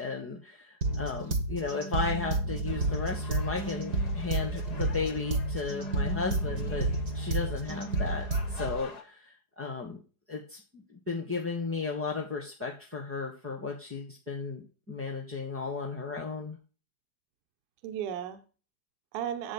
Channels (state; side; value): late; left; 4.8 ms